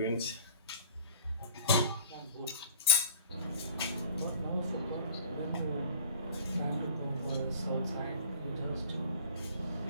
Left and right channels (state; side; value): inverted; both; correlation -0.46